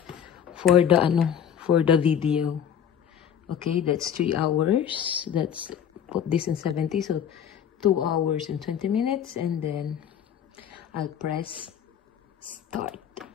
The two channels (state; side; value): quieter; right; 8.7 dB